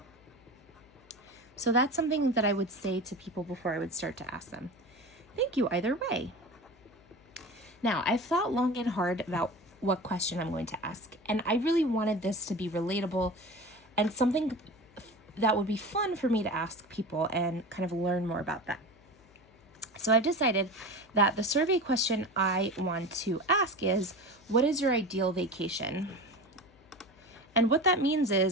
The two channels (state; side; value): noise; left; hum, 28 dB below the sound